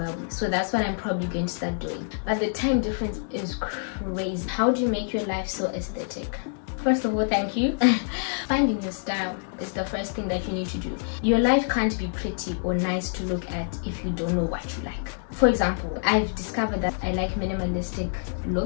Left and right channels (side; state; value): right; silent; digital silence